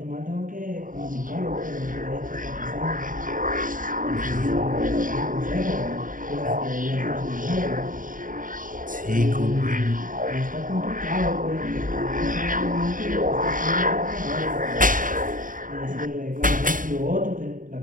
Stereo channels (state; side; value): late; left; 0.39 ms